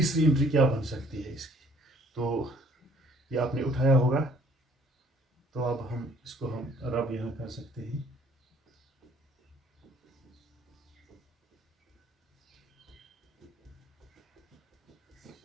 एंट्री क्या बन सकती है इसकी। तो ये आपने उठाया होगा, तो अब हम इसको रब यहाँ कर सकते हैं।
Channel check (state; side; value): normal; both; correlation 0.58